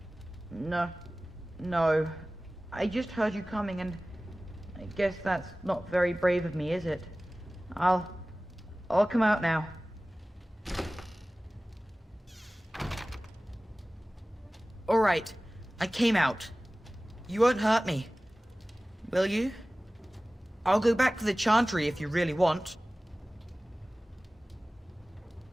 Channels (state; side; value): normal; both; correlation 0.98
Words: No. I just heard you coming, and I guess that's not very brave of me, is it? I'll come out now. All right. I came out. You won't hurt me. Will you? I'll go back to the Chantry if you really want.